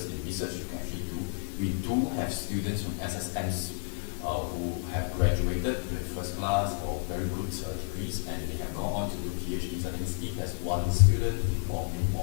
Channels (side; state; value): right; silent; digital silence